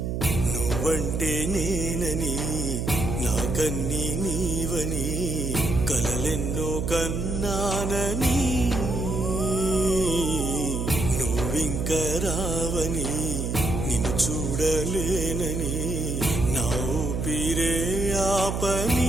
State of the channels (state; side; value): noise; right; hum, 2 dB below the sound